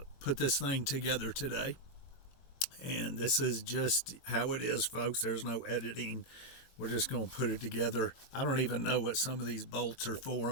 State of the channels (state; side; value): late; right; 21 ms